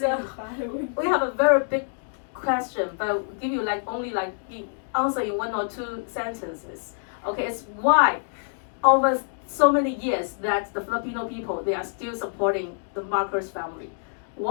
we have a very big question, but we'll give you only the answer in 1 or 2 sentences. Okay, it's why over so many years that the Filipino people, they are still supporting the Marcos family.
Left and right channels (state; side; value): silent; right; digital silence